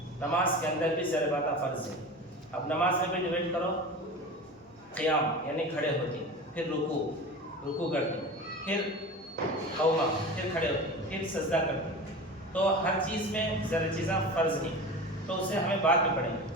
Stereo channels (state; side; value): normal; both; correlation 0.32